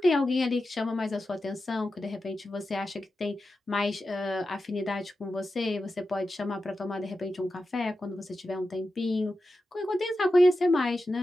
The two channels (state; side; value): normal; both; correlation 0.91